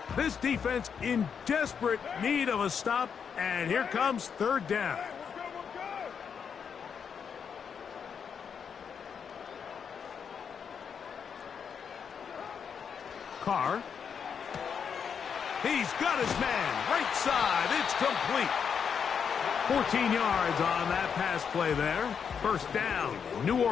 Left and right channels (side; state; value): right; quieter; 6.9 dB